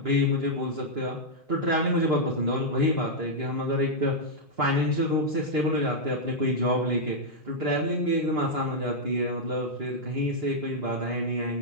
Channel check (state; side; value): normal; both; correlation -0.05